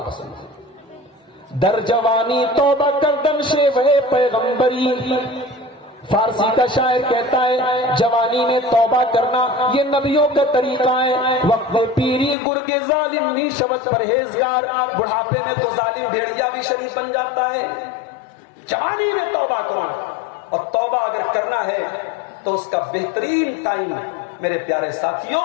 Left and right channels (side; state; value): right; drops out; at 12.4 s